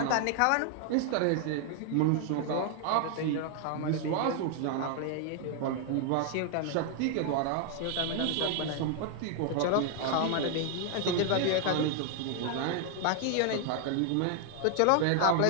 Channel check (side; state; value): both; different; correlation 0.00